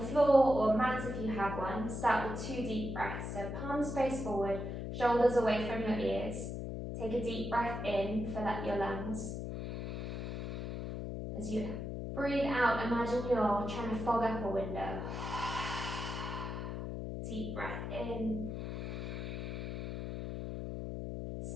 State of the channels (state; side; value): noise; left; hum, 5 dB below the sound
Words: or mat if you have one. Start with 2 deep breaths. So palms face forward, shoulders away from your ears. Take a deep breath in, fill up your lungs. As you breathe out, imagine you're trying to fog up a window. Deep breath in.